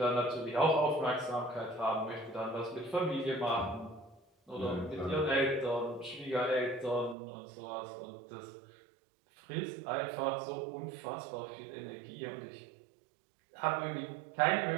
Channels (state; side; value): drops out; left; at 7.2 s